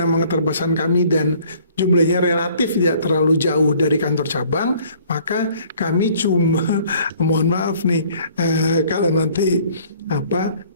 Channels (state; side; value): inverted; both; correlation -0.56